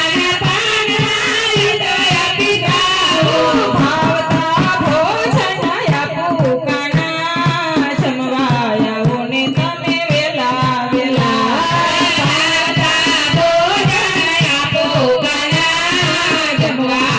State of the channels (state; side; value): identical; both; correlation 1.00